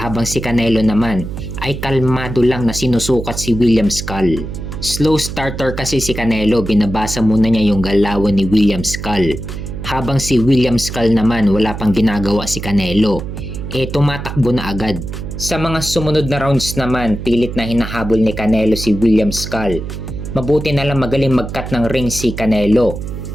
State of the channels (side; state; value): right; noise; hum, 7 dB below the sound